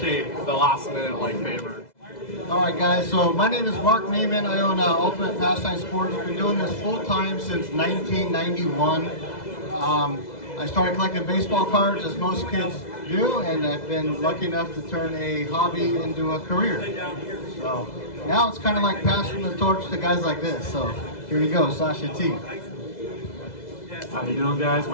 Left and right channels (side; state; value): right; late; 2.0 ms